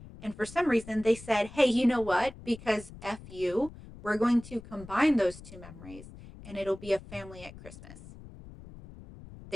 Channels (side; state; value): left; noise; rumble, 17 dB below the sound